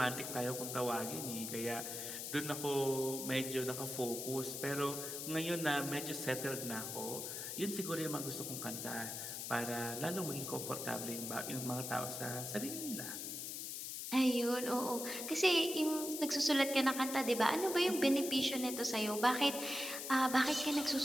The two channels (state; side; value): noise; left; hiss, 5 dB below the sound